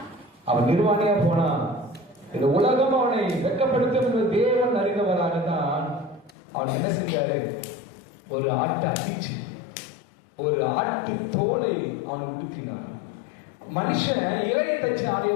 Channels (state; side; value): drops out; right; at 6.4 s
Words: அவன் நிர்வாணியா போனான். இந்த உலகம் அவனை வெட்கப்படுத்தும் என்று தேவன் அறிந்தவராகத்தான் அவன் என்ன செஞ்சாரு, ஒரு ஆட்டை அடிச்சு ஒரு ஆட்டு தோலை அவனை உடுத்தினார். மனுஷன் இலையை தச்சு ஆடைய